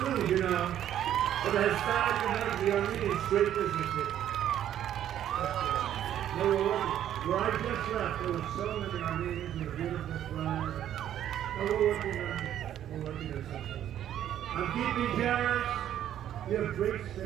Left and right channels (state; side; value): quieter; left; 11.0 dB